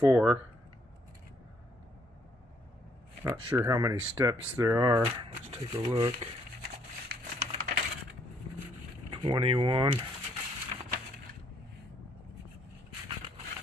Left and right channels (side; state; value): both; normal; correlation 0.69